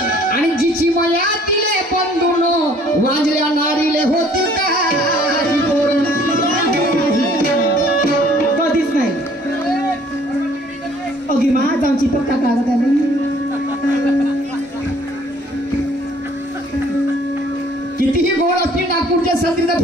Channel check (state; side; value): normal; both; correlation 0.58